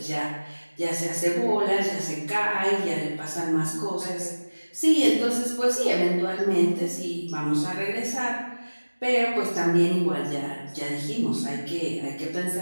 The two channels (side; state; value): both; inverted; correlation -1.00